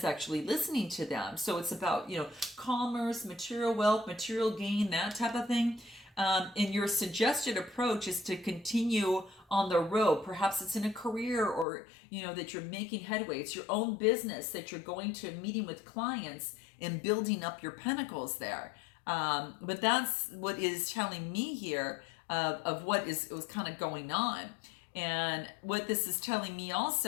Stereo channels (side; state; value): right; drops out; at 11.7 s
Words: actually listening to them. So it's about commerce, material wealth, material gain, that type of thing. And your suggested approach is to continue on the road. Perhaps it's in a career, or that you're making headway. It's your own business that you're going to meeting with clients and building up your pentacles there. But that's what is telling me here of what was kind of going on. And what this is telling me